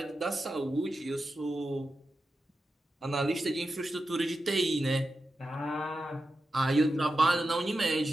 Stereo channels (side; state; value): both; normal; correlation 0.90